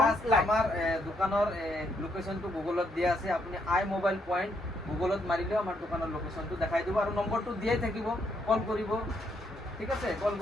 আমাৰ দোকানৰ লোকেশ্যনটো গুগলত দিয়া আছে আপুনি আই মোবাইল পইণ্ট গুগলত মাৰিলেও আমাৰ দোকানৰ লোকেশ্যনটো দেখাই দিব আৰু নম্বৰটো দিয়াই থাকিব কল কৰিব ঠিক আছে কল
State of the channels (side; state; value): both; normal; correlation 0.74